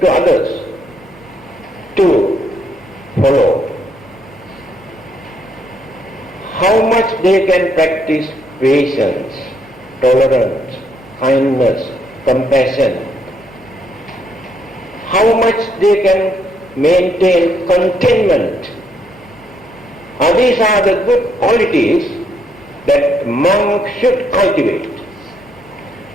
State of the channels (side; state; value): both; normal; correlation 0.73